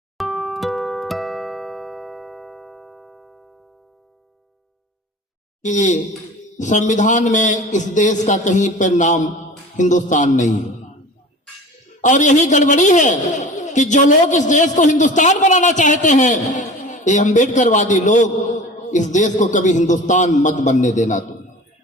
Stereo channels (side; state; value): both; normal; correlation 0.39